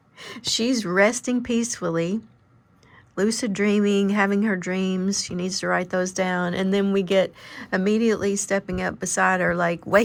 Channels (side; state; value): both; identical; correlation 1.00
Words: she's resting peacefully, lucid dreaming, having her dreams. She needs to write those down. And then we get immediately stepping up beside her, like